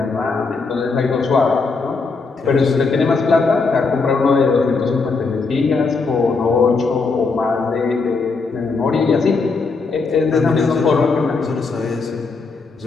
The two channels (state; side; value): quieter; right; 4.3 dB